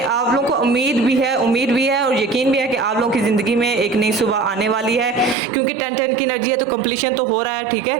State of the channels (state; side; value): drops out; left; at 5.4 s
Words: आप लोगों को उम्मीद भी है और यकीन भी है कि आप लोगों की ज़िंदगी में एक नई सुबह आने वाली है, क्योंकि 10-10 की एनर्जी है तो कंप्लीशन तो हो रहा है, ठीक